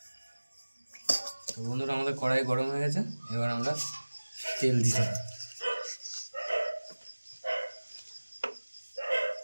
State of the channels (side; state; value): both; inverted; correlation -1.00